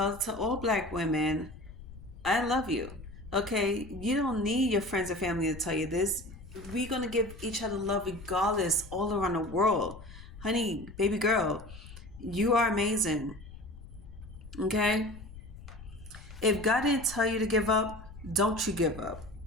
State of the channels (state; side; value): noise; left; rumble, 16 dB below the sound